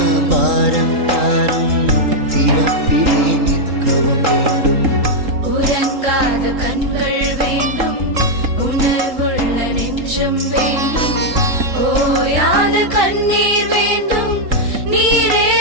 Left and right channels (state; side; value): late; left; 3.8 ms